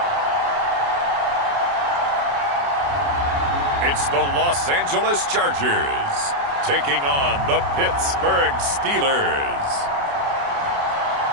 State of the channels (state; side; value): late; left; 29 ms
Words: It's the Los Angeles Chargers taking on the Pittsburgh Steelers.